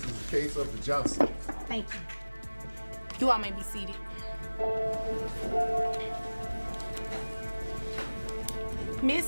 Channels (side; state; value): both; inverted; correlation -1.00